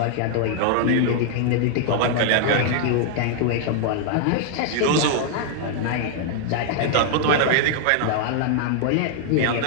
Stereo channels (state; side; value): different; both; correlation 0.00